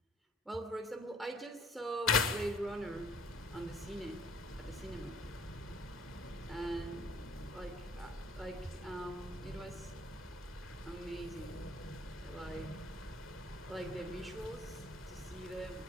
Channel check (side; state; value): both; normal; correlation 0.58